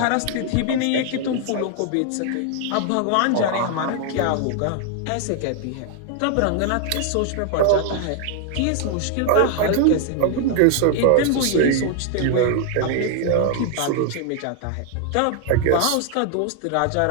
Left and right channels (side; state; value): both; different; correlation 0.00